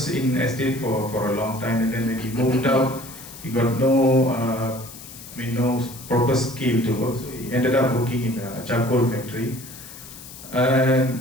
in estate for a long time, and then when he moved out, he got no proper skill to work. So he ended up working in a charcoal factory.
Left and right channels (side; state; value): left; noise; hiss, 15 dB below the sound